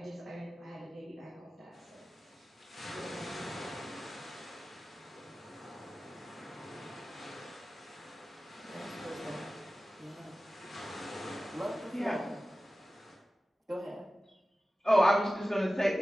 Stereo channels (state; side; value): normal; both; correlation 0.95